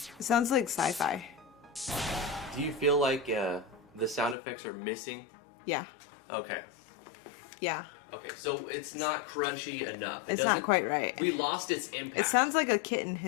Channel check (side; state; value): right; drops out; at 4.4 s